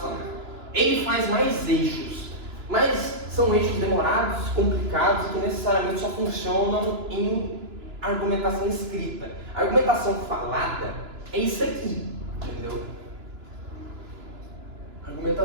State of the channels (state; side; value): late; left; 2.9 ms